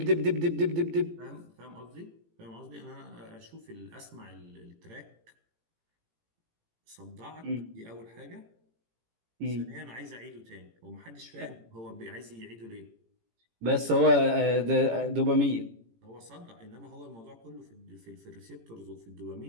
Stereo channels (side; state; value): left; late; 18 ms